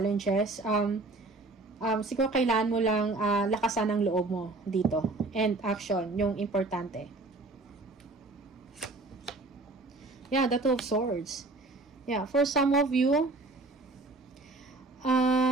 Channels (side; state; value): left; quieter; 3.2 dB